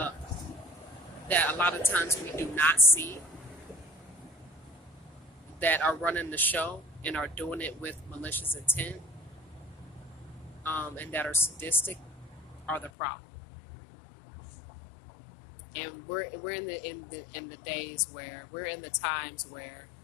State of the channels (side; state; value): right; drops out; at 12.9 s